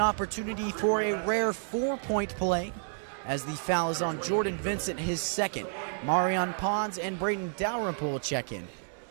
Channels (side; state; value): left; silent; digital silence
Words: for a rare 4-point play as the foul is on Geordan Vincent, his 2nd. Marion Pons and Braden Dalrymple will check in.